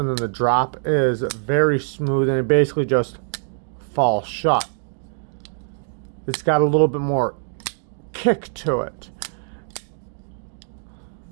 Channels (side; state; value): left; silent; digital silence